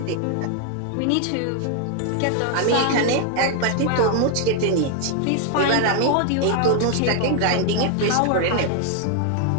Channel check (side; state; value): both; different; correlation 0.00